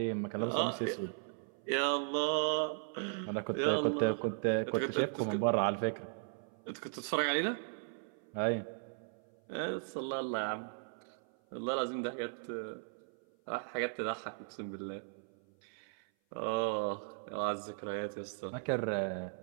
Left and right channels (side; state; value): left; silent; 53 dB below the other